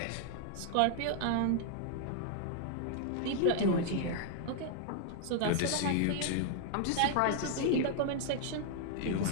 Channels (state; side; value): different; both; correlation -0.01